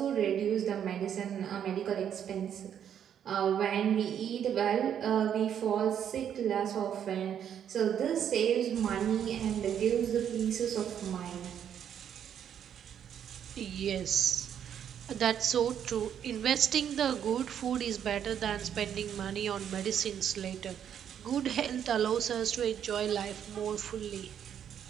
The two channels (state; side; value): quieter; left; 9.1 dB